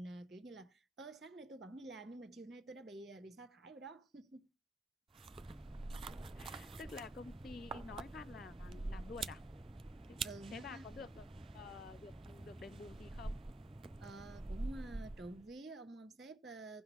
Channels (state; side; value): normal; both; correlation 0.77